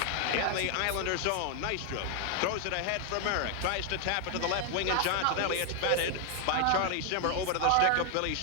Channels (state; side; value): different; both; correlation 0.00